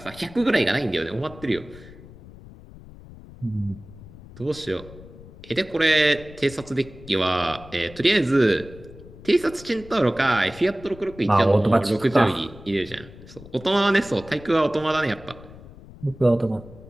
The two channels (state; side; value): noise; left; rumble, 19 dB below the sound